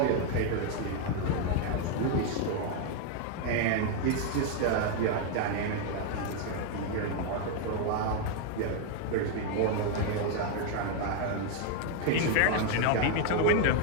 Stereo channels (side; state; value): both; different; correlation 0.01